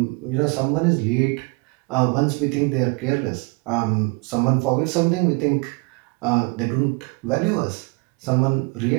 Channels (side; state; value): left; quieter; 29.8 dB